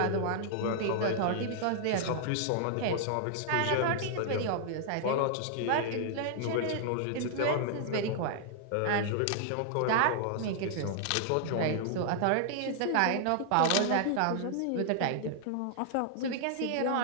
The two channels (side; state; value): both; different; correlation -0.01